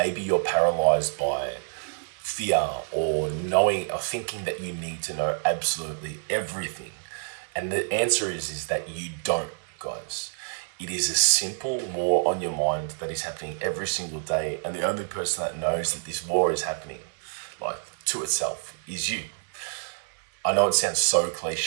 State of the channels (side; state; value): left; silent; digital silence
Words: you're paralyzed by fear or knowing or thinking that you need to know absolutely everything. And the answer is that you don't, guys. It is a simple war on your mind that is happening every single day. And the only person that knows that this war is happening, like to itself, is you. I know it sounds so